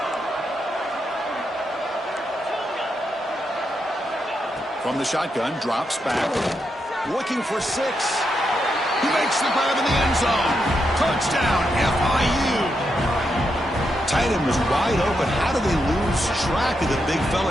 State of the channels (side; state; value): both; normal; correlation 0.83